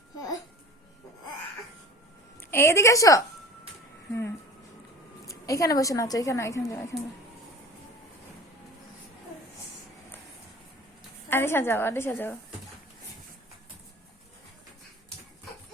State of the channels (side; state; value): both; normal; correlation 0.40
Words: এইদিকে এসো। এখানে বসে নাচো, এখানে এখানে যাও, এখানে। আনিশা যাও, আনিশা যাও।